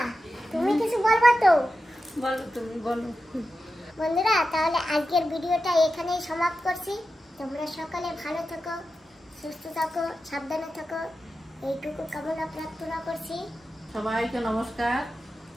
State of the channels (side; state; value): both; normal; correlation 0.91